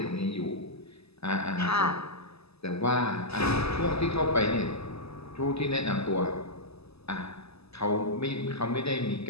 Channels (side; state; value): right; late; 0.79 ms